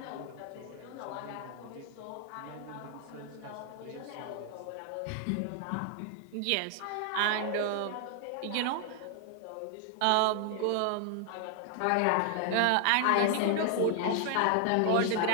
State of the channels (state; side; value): different; both; correlation 0.00